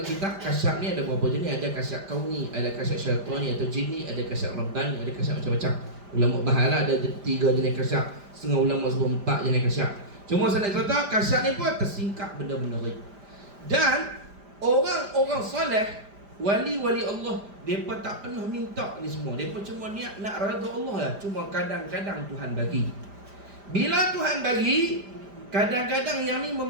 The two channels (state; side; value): late; left; 5.0 ms